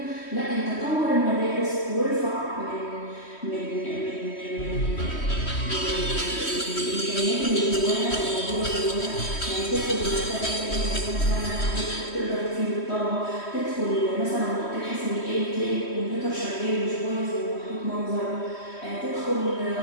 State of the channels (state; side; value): late; right; 3.1 ms